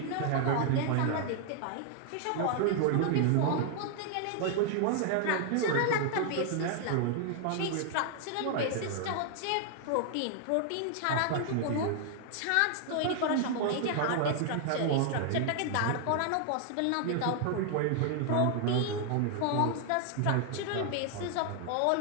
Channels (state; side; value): different; both; correlation 0.00